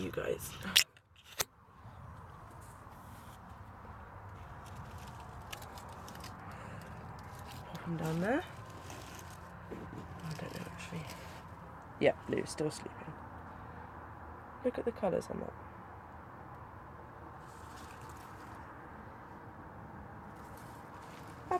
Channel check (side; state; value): both; identical; correlation 1.00